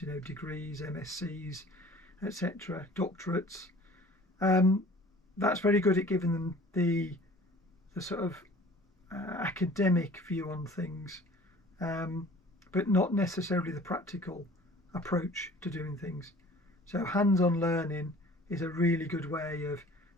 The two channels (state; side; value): normal; both; correlation 0.48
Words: degrees, MScs, etc., doctorates. That's very good at giving them the sort of academic view on things, but not necessarily the practical approach to doing things. So hands-on learning is a really good way of